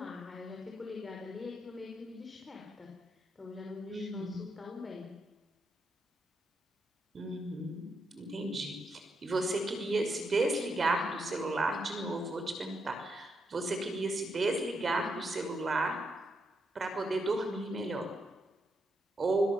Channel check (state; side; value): normal; both; correlation 0.81